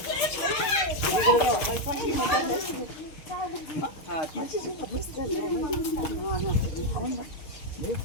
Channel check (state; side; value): late; right; 6.3 ms